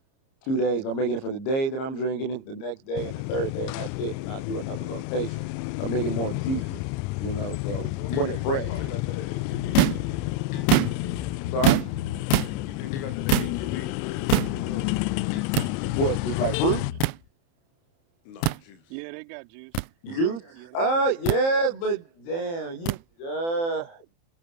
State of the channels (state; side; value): late; right; 30 ms